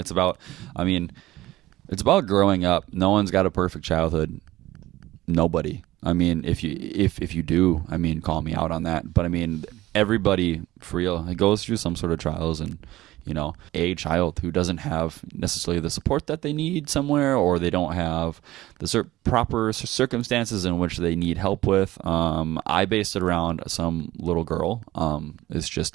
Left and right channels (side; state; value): left; quieter; 16.6 dB